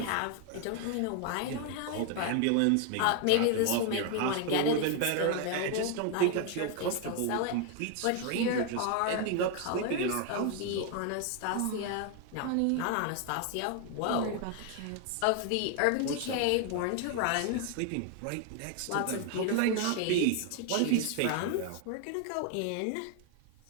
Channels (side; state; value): both; different; correlation 0.01